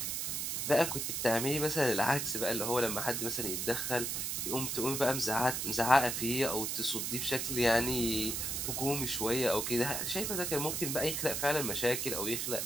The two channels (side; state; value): right; noise; hiss, 1 dB below the sound